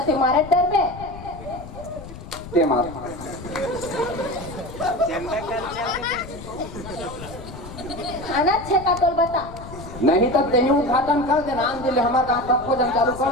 तुम्हारे डर में ते मार खाना छे का तोल बता नहीं तब दही उद्घाटन कर देना आन दिले हमारे गाँव सब भोजन चालू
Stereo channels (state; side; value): noise; left; rumble, 13 dB below the sound